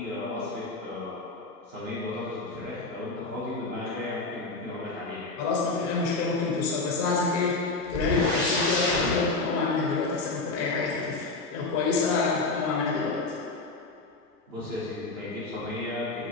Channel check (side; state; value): right; quieter; 3.5 dB